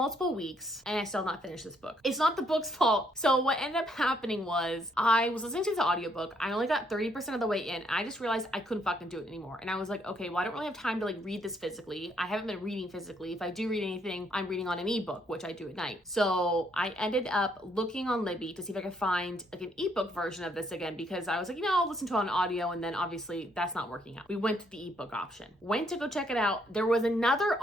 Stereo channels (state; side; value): normal; both; correlation 0.71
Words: weeks and I still have not finished this book. It's not the book's fault. So what ended up happening was I was listening to the audiobook. I only got 30% of the way in. I just realized I couldn't fucking do it anymore. And I was like, okay, well, I don't really have time to like read this physically. I haven't been reading physically. If I do read anything, I'm reading on an ebook, which I do at night. So I ended up looking on Libby to see if I could find like an ebook version of this again, because I was like, you know, I'll listen to it on audio, and then obviously that's not working out. We went to the ebook option. Went to go check it out. There was another